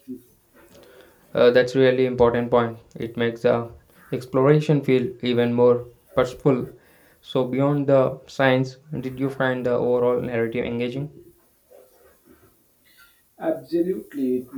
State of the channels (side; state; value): both; identical; correlation 1.00